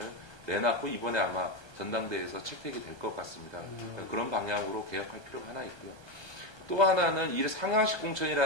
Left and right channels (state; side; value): late; right; 1.3 ms